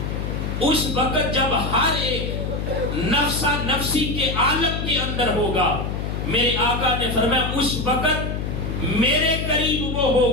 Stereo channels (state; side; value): noise; left; hum, 3 dB below the sound